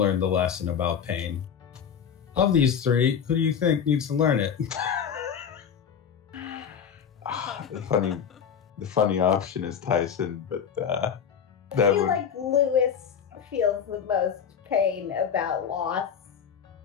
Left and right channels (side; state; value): right; quieter; 7.6 dB